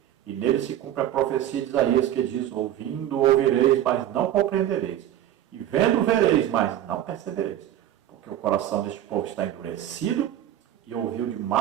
E nele se cumpre a profecia de Isaías, que diz: ouvindo ouvireis, mas não compreendereis, e vendo vereis, mas não percebereis. Porque o coração deste povo está endurecido, e ouviu de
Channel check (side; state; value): left; quieter; 11.9 dB